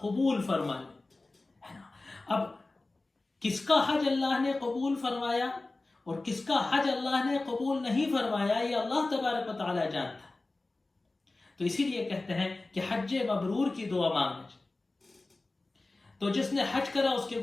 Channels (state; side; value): quieter; right; 3.2 dB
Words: قبول فرمائے ہے نا. اب کس کا حج اللہ نے قبول فرمایا اور کس کا حج اللہ نے قبول نہیں فرمایا، یہ اللہ تبارک و تعالی جانتا ہے. تو اسی لیے کہتے ہیں کہ حج مبرور کی دعا مانگنا چاہیے. تو جس نے حج کرا اس کے